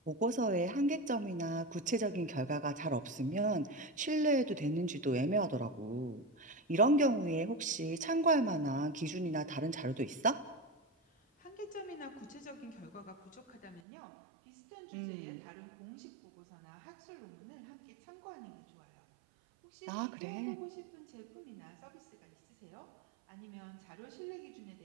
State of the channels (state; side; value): drops out; left; at 13.8 s